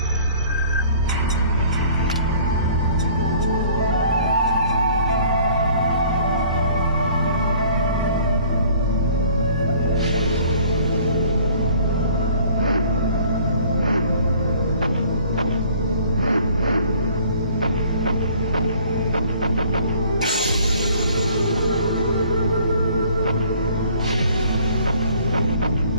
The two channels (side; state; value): both; inverted; correlation -0.54